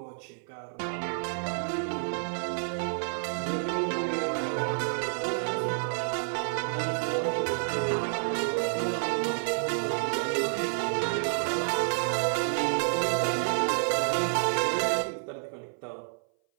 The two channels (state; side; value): silent; left; 57 dB below the other